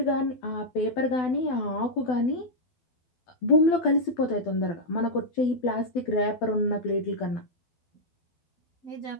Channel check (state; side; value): late; right; 12 ms